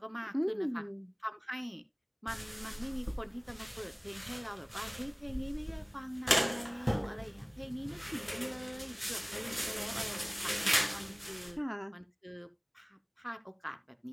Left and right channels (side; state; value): both; identical; correlation 1.00